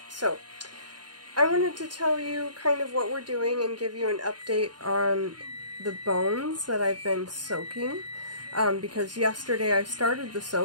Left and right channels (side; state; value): left; late; 0.70 ms